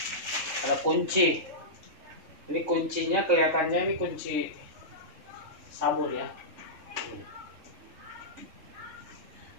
kunci. Ini kuncinya kelihatannya ini kunci sabun ya.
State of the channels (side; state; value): left; late; 3.6 ms